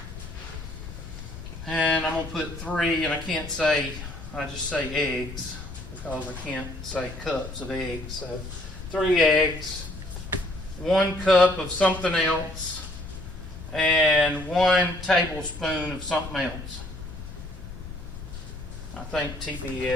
And I'm going to put 3, and I can't say, I just say eggs because I can't say cups of eggs. So 3 eggs, 1 cup of something else, and 1 tablespoon of something else. I think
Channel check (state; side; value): noise; left; rumble, 11 dB below the sound